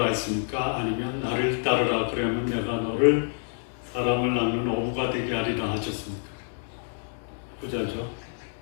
했습니까? 아니면 나를 따르라 그러면 내가 너를 사람을 낳는 어부가 되게 하리라 하셨습니까? 부자죠.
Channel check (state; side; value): silent; right; 60 dB below the other